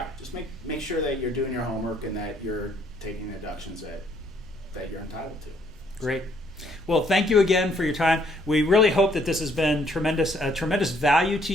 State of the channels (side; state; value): both; normal; correlation 0.67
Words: just make sure that you're doing your homework and that you're taking the deductions that you're entitled to. Great. Well, thank you again for your time. We really hope that this has been tremendous value to